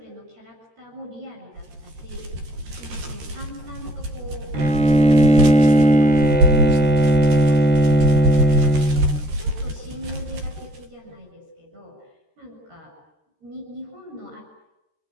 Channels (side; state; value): left; late; 13 ms